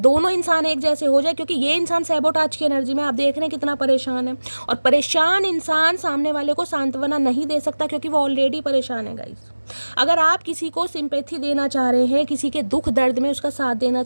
इंसान एक जैसे हो जाए, क्योंकि ये इंसान सैबोटाज की एनर्जी में, आप देख रहे हैं कितना परेशान है, और परेशान इंसान सामने वाले को सांत्वना नहीं दे सकता क्योंकि वो ऑलरेडी परेशान है गाइस। अगर आप किसी को सिंपैथी देना चाह रहे हैं, किसी के दुख दर्द में उसका साथ देना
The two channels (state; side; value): inverted; both; correlation -1.00